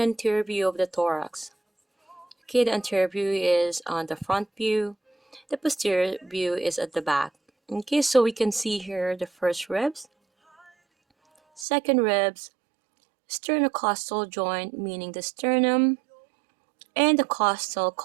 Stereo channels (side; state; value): left; drops out; at 11.7 s